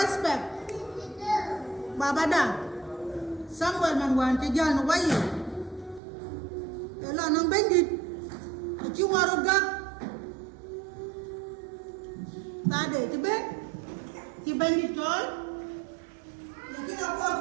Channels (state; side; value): drops out; left; at 6.0 s